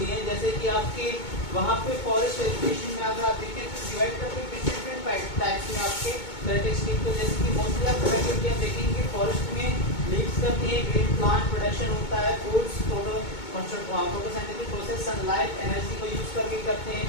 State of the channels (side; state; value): right; late; 2.2 ms